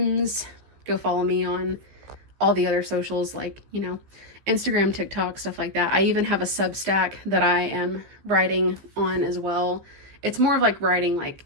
Go follow me on all the other socials, like, you know, Instagram, TikTok, stuff like that. I even have a Substack that I am writing on as well. It's more of like writing like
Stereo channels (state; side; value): late; left; 15 ms